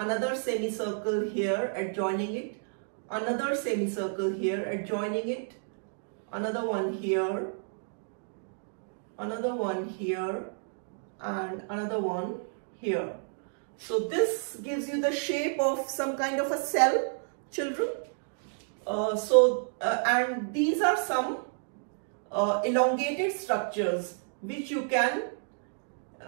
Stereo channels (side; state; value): left; silent; digital silence